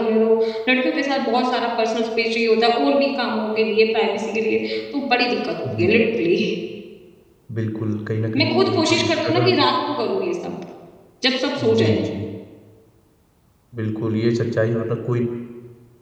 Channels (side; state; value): both; identical; correlation 1.00